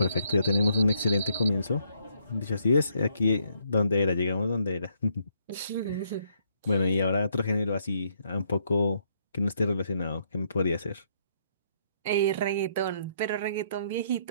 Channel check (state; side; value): inverted; both; correlation -0.72